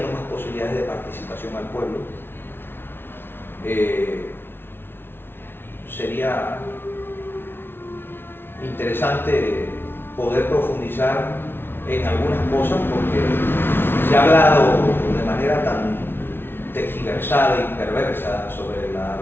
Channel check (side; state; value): right; late; 0.11 ms